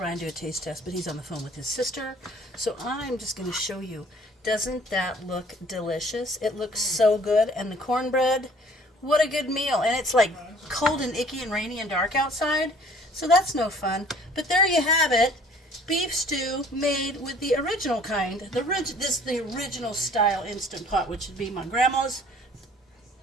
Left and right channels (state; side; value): normal; both; correlation 0.54